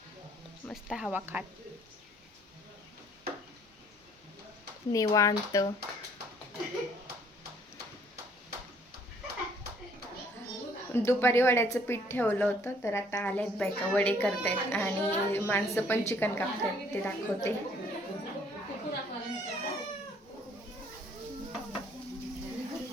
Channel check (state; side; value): normal; both; correlation 0.61